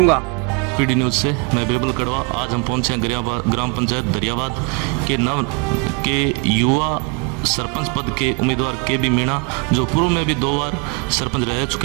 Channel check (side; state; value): left; quieter; 30.9 dB